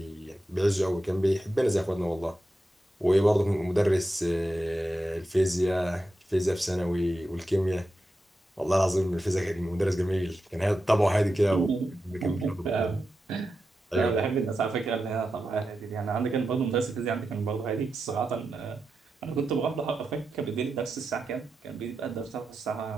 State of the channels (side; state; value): both; normal; correlation 0.89